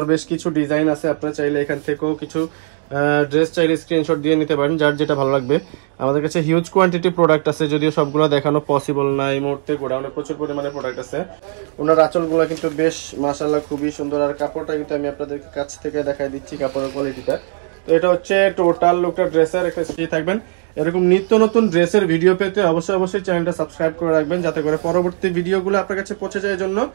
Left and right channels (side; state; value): left; silent; 67 dB below the other